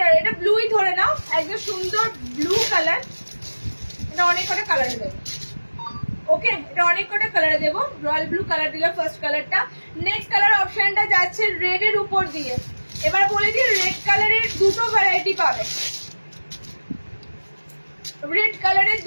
এটা ব্লুই ধরে নাও, একদম সুন্দর ব্লু কালার, এটা অনেক কটা কালারে দেবো। ওকে, এটা অনেক কটা কালারে দেবো, রয়্যাল ব্লু কালার দিলাম ফার্স্ট কালারটা। নেক্সট কালার অপশনটা যাচ্ছে রেড এর উপর দিয়ে। এবার বলে দিই রেড কালারের দুটো ভ্যারাইটি পাবে, রেড কালারের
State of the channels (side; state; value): both; inverted; correlation -1.00